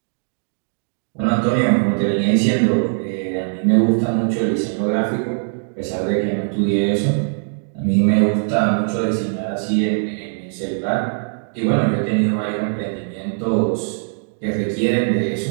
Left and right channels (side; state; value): left; silent; digital silence